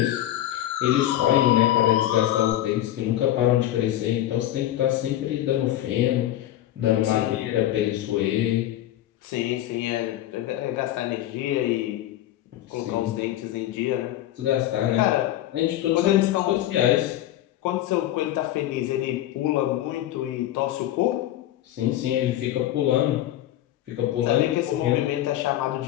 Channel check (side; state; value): right; quieter; 13.5 dB